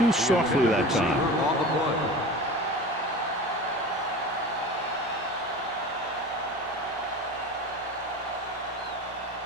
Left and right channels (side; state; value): both; normal; correlation 0.34